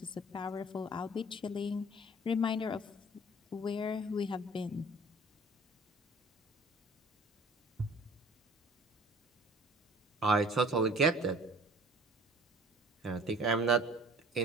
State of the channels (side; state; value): both; normal; correlation 0.50